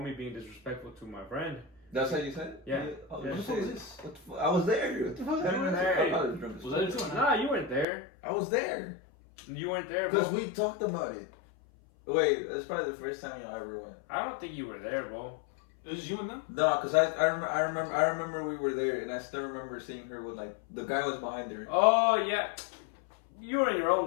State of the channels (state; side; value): drops out; right; at 7.9 s